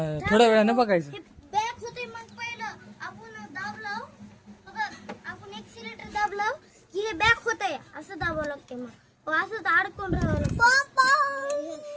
थोड्या वेळानं बघायचं. बॅक होते मग पहिलं आपण दाबलं बघा. आपण एक्सिलेटर दाबलं की हे बॅक होतंय. असं दाबावं लागते. मग असं तर अडकून राहावं लागतं.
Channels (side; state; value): both; identical; correlation 1.00